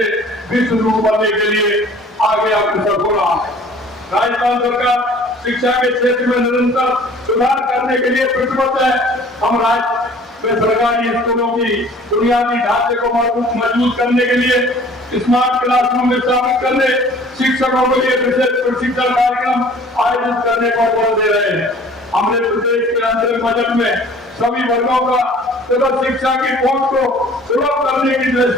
विश्व गुरु बनने के लिए आगे अग्रसर हो रहा है। राजस्थान सरकार शिक्षा के क्षेत्र में निरंतर सुधार करने के लिए प्रतिबद्ध है। हम राज्य में सरकारी स्कूलों की बुनियादी ढांचे को मजबूत करने के लिए स्मार्ट क्लासरूम स्थापित करने, शिक्षकों के लिए विशेष प्रशिक्षण कार्यक्रम आयोजित करने पर बल दे रहे हैं। हमने प्रदेश के अंतरिम बजट में सभी वर्गों का शिक्षा की पहुंच को सुलभ करने की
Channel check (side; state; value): both; normal; correlation 0.50